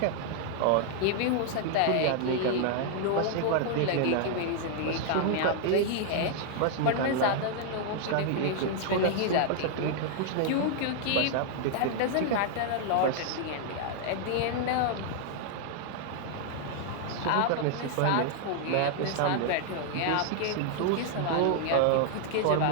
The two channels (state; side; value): different; both; correlation 0.00